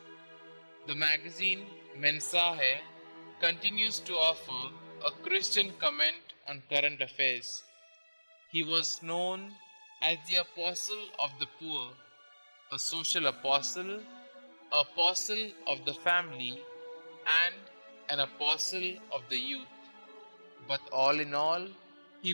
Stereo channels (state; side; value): inverted; both; correlation -1.00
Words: The magazine Mensaje continues to offer a Christian comment on current affairs. He was known as the Apostle of the Poor, a social apostle of the family, and an apostle of the youth. But all in all,